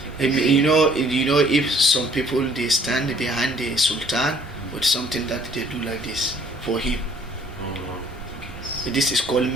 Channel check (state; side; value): normal; both; correlation 0.59